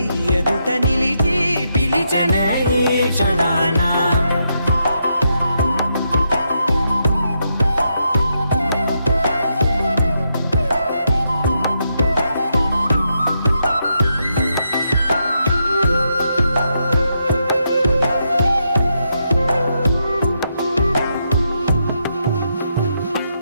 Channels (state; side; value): inverted; both; correlation -0.81